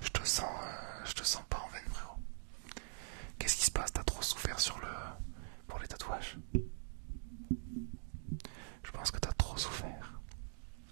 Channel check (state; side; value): silent; left; digital silence